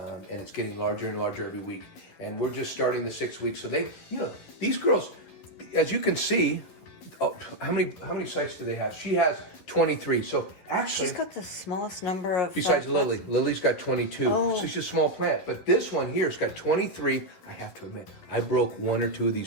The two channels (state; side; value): late; right; 11 ms